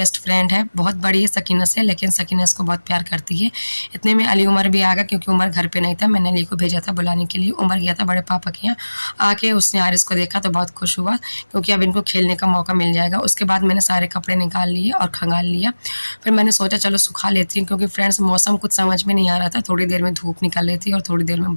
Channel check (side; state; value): both; inverted; correlation -1.00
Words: फ्रेंड है, बहुत बड़ी है सकीना से, लेकिन सकीना इसको बहुत प्यार करती है। इतने में अली उमर भी आ गया क्योंकि उमर घर पे नहीं था। मैंने अली को भेजा था बुलाने के लिए। उमर गया था बड़े पापा के यहाँ। आके उसने आरिस को देखा तो बहुत खुश हुआ क्योंकि अब इनको खेलने का मौका मिल जाएगा। उसके बाद मैंने सारे कपड़े निकाल लिए और खंगाल लिया। फिर मैंने सोचा चलो सुखा लेती हूँ क्योंकि फ्रेंड्स मौसम कुछ समझ में नहीं आ रहा था। थोड़ी देर में धूप निकल रही थी और थोड़ी देर में